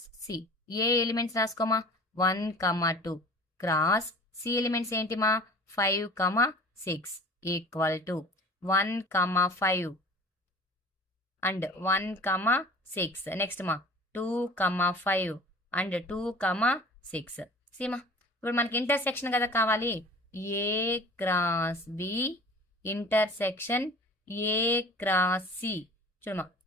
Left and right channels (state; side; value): normal; both; correlation 0.44